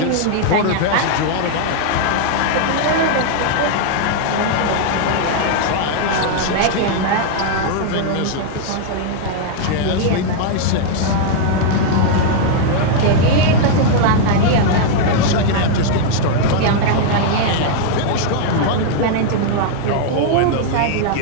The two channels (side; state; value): both; different; correlation -0.01